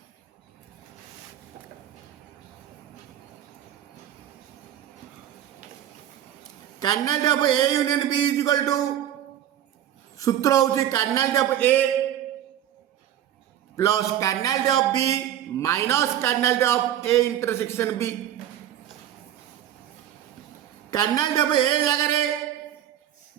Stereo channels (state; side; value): quieter; left; 11.3 dB